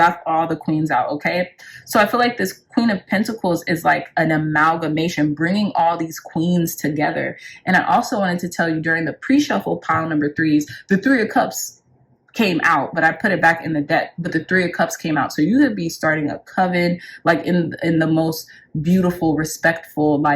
all the queens out, okay? So I feel like this Queen of Pentacles is like an amalgamation, bringing all these queens together. And I also wanted to tell you, during the pre-shuffle pile number 3s, the 3 of Cups came out, but I put it back in the deck, but the 3 of Cups came out. So you could be starting a coven, like in the most beautiful, respectful,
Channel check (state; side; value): identical; both; correlation 1.00